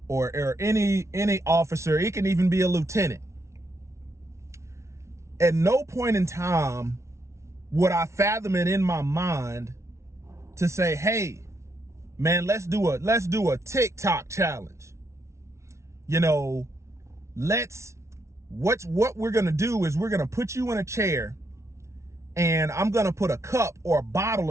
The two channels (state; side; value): late; left; 0.13 ms